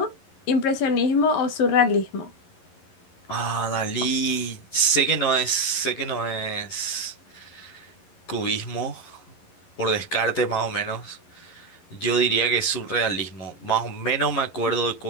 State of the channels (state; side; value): late; right; 11 ms